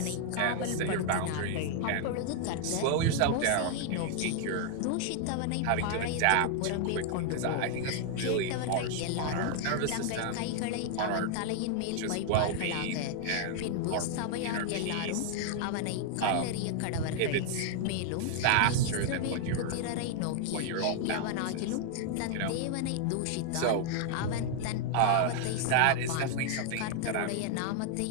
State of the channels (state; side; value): different; both; correlation 0.00